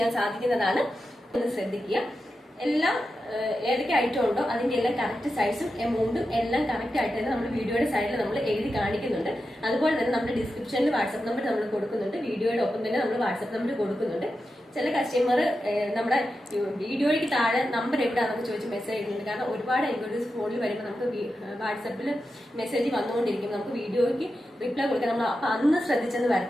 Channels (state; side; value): normal; both; correlation 0.90